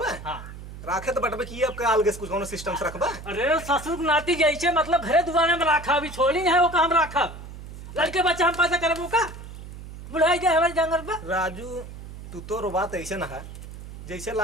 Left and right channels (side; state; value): right; noise; hum, 13 dB below the sound